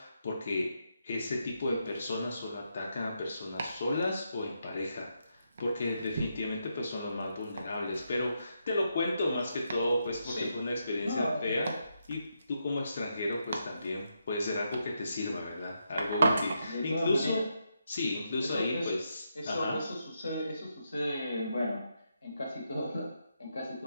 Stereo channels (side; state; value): both; inverted; correlation -0.82